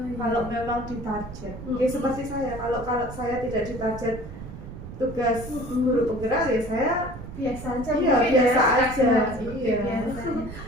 kalau memang ditarget. Seperti saya, kalau saya tidak ditarget tugas guru penggerak ya saya biasa aja. Biasa aja.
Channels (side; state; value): right; noise; rumble, 11 dB below the sound